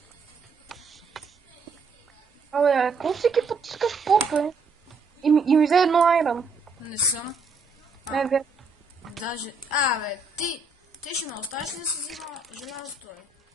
Абе, какво всеки път искаш поп, бе? И ми взе едно айрон. Не съм. Не, бе. Даже... бе, ти ще ме оставиш ли да си взима желязото, бе?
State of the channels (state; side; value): quieter; left; 4.1 dB